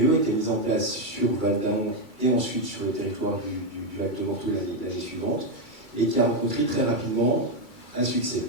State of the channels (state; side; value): late; left; 2.3 ms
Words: a été mise en place sur Val-d'Aon et ensuite sur le territoire du Val-de-Morteau l'année suivante, et qui a rencontré très rapidement un succès.